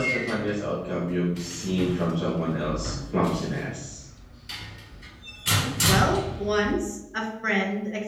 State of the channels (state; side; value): identical; both; correlation 1.00